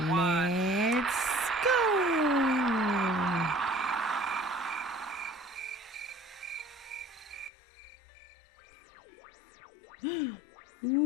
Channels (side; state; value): right; drops out; at 7.5 s